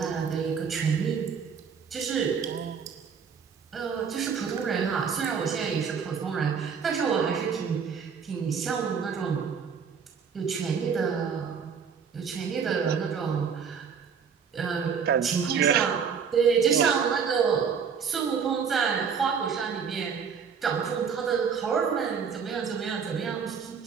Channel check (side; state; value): left; quieter; 6.5 dB